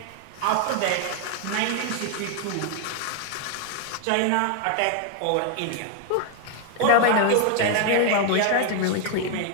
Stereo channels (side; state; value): both; different; correlation 0.00